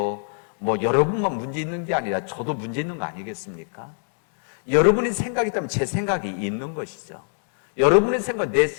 뭐 여러분만 문제 있는 게 아니라 저도 문제 있는 거 아니겠습니까? 여러분의 생각이 있다면 제 생각이 있는 것이죠. 여러분의 생각,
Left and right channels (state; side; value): silent; right; 60 dB below the other